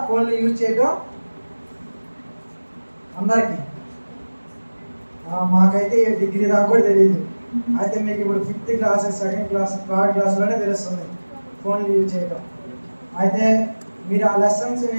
ఫోన్లు యూజ్ చేయడం అందరికీ. మాకైతే డిగ్రీ దాకా కూడా తెలియదు. అయితే మీకు ఇప్పుడు 5th class, 2nd class, 3rd క్లాస్లోనే తెలుస్తుంది ఫోన్లు యూజ్ చేయడం. అయితే మీరు ఆ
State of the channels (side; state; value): both; inverted; correlation -1.00